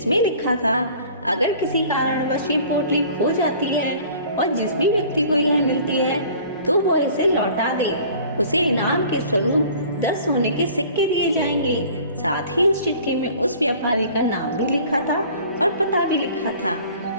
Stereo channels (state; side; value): inverted; both; correlation -0.48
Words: लिखा था, अगर किसी कारणवश ये पोटली खो जाती है और जिस भी व्यक्ति को यह मिलती है तो वो इसे लौटा दे, उसे इनाम के स्वरूप 10 सोने के सिक्के दिए जाएंगे। साथ ही उस चिट्ठी में उस व्यापारी का नाम भी लिखा था और पता भी लिखा था